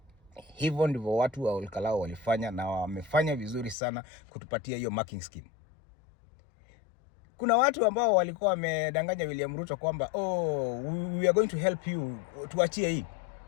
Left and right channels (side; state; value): right; drops out; at 3.8 s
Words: Hivyo ndivyo watu wa Olkalao walifanya, na wamefanya vizuri sana kutupatia hiyo marking scheme. Kuna watu ambao walikuwa wamedanganya William Ruto kwamba we are going to help you, tuachie hii.